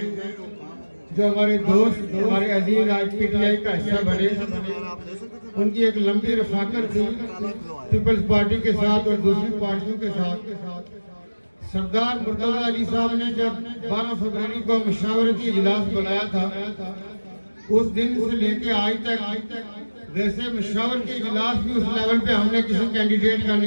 جو ہمارے دوست، ہمارے عزیز آج پی ٹی آئی کا حصہ بنے، ان کی ایک لمبی رفاقت تھی پیپلز پارٹی کے ساتھ اور دوسری پارٹیوں کے ساتھ۔ سردار مرتضی علی صاحب نے جب 12 فروری کو مشاورتی اجلاس بلایا تھا، اس دن سے لے کے آج تک ویسے مشاورتی اجلاس بھی اس لیول پہ ہم نے کسی کینڈیڈیٹ کا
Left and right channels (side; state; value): both; inverted; correlation -1.00